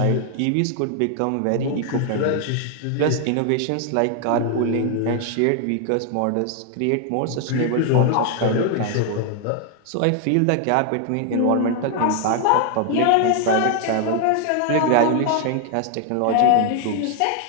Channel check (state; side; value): different; both; correlation 0.00